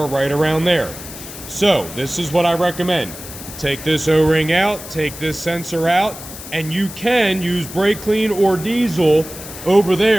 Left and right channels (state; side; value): noise; left; hiss, 13 dB below the sound